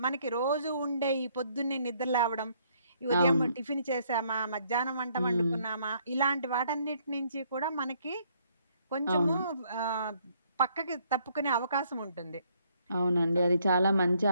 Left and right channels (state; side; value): inverted; both; correlation -0.68